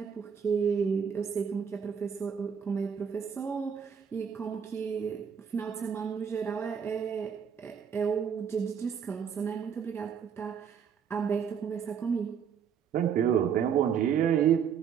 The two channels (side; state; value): left; quieter; 7.5 dB